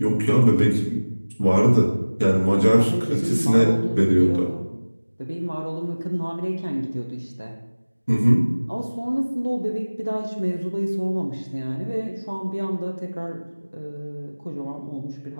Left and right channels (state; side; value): inverted; both; correlation -1.00